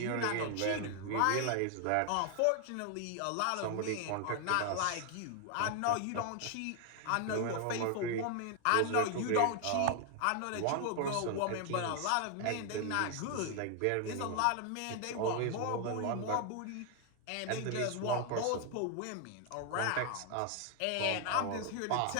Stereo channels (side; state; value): both; different; correlation 0.00